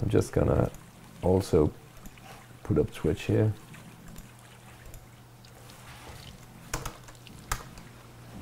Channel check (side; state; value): both; identical; correlation 1.00